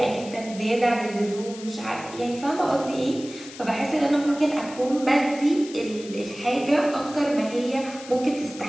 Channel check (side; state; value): left; noise; hiss, 16 dB below the sound